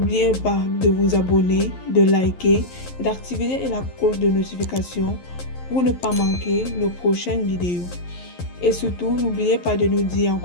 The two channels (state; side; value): late; right; 11 ms